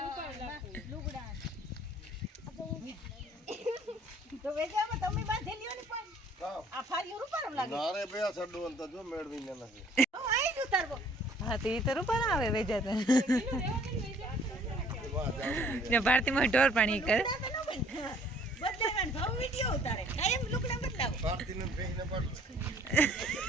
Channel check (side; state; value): both; normal; correlation 0.57